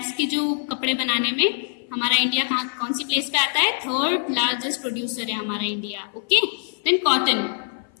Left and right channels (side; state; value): right; silent; 55 dB below the other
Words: के जो कपड़े बनाने में हमारा इंडिया कौन सी प्लेस पे आता है, थर्ड लार्जेस्ट प्रोड्यूसर है हमारा India. Okay, then cotton,